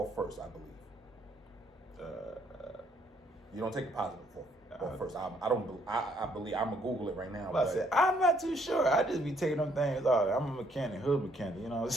I believe. You don't take the positive off first. I believe I'm gonna Google it right now. I'm not too sure. I just be taking them things off. I'm a mechanic, hood mechanic. You know what I'm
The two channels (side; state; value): both; normal; correlation 0.68